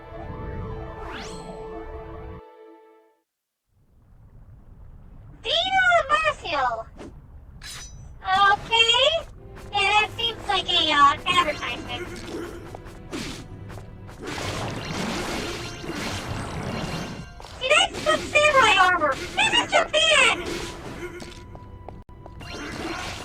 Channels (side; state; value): both; identical; correlation 1.00